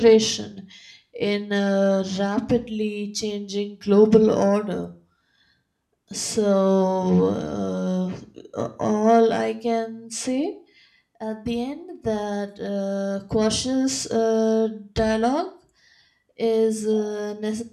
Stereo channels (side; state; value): both; identical; correlation 1.00